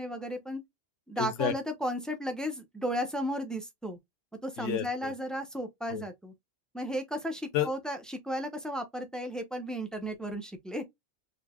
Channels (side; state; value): both; normal; correlation 0.52